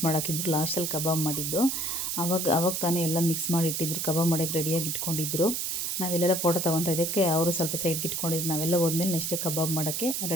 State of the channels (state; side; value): noise; right; hiss, 1 dB below the sound